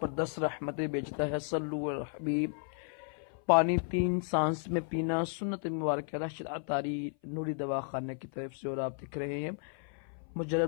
पर 10 रहमतें भेजता है। सल्लु अल हबीब। पानी 3 सांस में पीना सुन्नत मुबारक है। राशिद अतारी नूरी दवा खाने की तरफ से। और आप दिख रहे हैं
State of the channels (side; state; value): right; silent; 55 dB below the other